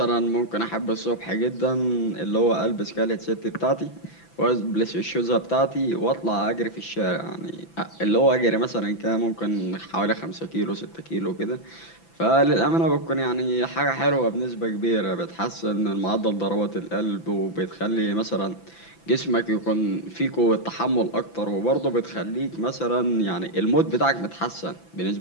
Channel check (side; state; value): right; late; 6.0 ms